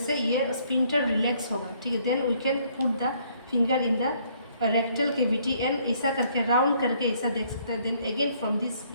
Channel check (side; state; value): both; inverted; correlation -0.65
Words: ये स्पिंटर रिलैक्स होगा. ठीक है, then we can put the finger in the rectal cavity and ऐसा करके राउंड करके ऐसा देख सकता है. देन अगेन फ्रॉम दिस